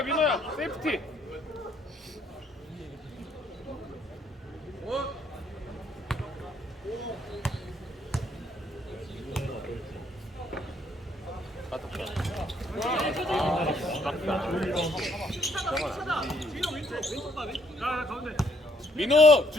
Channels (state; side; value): normal; both; correlation 0.68